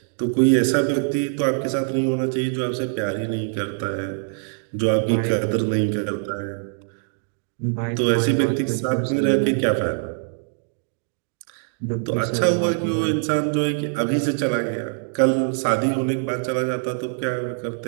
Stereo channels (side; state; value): left; silent; digital silence